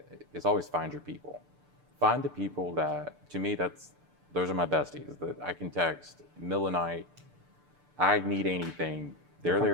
is always find your people. Find the people that, to me, those are my besties that I can text middle of the night. I need anything, they're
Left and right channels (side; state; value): left; late; 6.8 ms